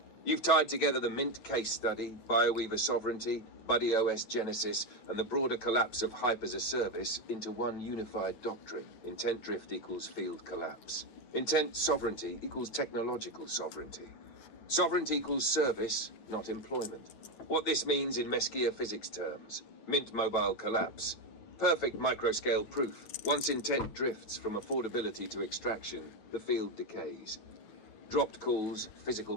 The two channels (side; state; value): right; late; 9.1 ms